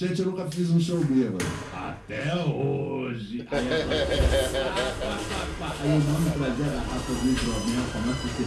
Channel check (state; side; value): identical; both; correlation 1.00